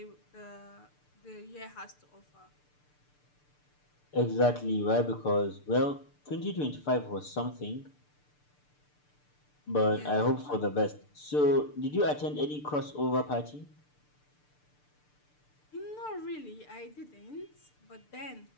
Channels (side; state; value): right; late; 6.8 ms